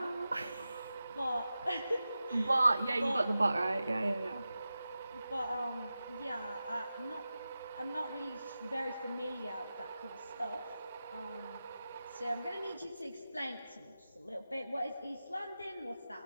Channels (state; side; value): inverted; both; correlation -0.93